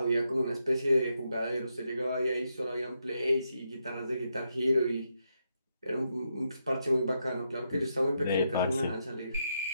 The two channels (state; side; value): inverted; both; correlation -0.82